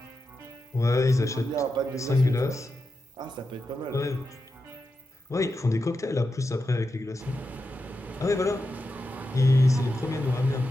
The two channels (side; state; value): both; normal; correlation 0.89